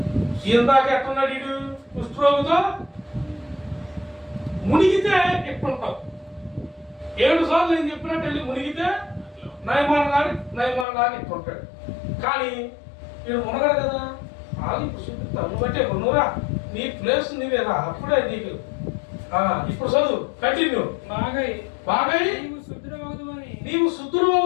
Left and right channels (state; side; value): drops out; right; at 10.9 s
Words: ఇందాక ఎట్టున్నాడు వీడు కుష్ఠరోగితో మునిగితే ఎట్టుంటావు 7 సార్లు నేను చెప్పినట్టు వెళ్ళి మునిగితే నయమానగాడు ఎట్టుంటాడు. కానీ వీడు మునగడు కదా. ఇప్పుడు చూపిస్తాను బట్టే నువ్వురా నీ ప్లేస్ నీవేరా అప్పుడే నీకు. ఇప్పుడు చదువు కంటిన్యూ. బాగై నీవు శుద్ధుడు